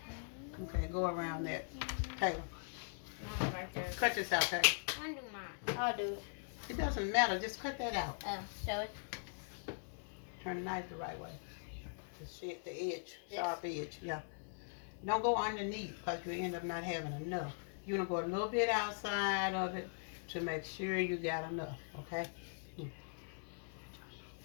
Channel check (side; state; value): right; silent; digital silence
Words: Okay, go around that. Taylor. Mine right there. Cut this out, hey. I do mine. I'll do it. It doesn't matter. Just cut that out. So it. Turn the knife the right way. The edge, sharp edge. Yeah. Don't go underneath because you end up not having enough. You're gonna go a little bit outside of it to make sure you got enough. Okay.